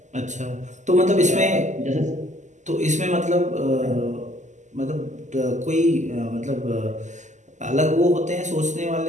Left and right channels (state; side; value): late; left; 0.34 ms